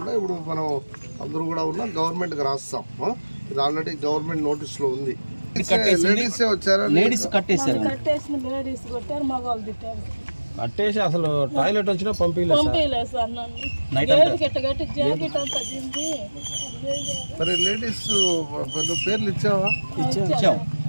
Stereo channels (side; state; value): both; inverted; correlation -1.00